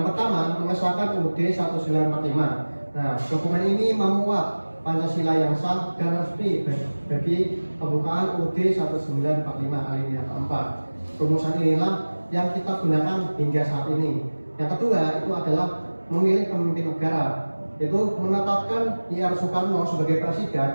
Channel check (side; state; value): both; inverted; correlation -1.00